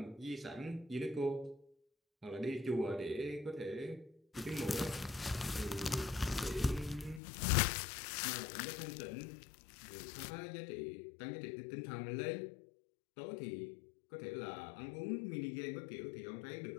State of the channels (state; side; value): drops out; right; at 7.2 s